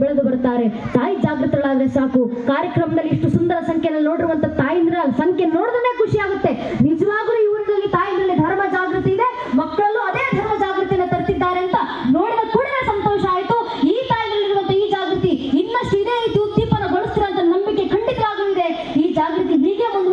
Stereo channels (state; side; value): identical; both; correlation 1.00